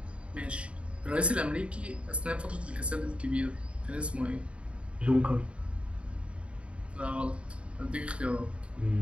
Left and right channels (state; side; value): late; left; 0.059 ms